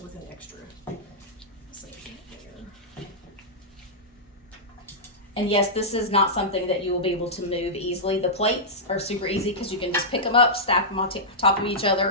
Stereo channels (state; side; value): normal; both; correlation -0.12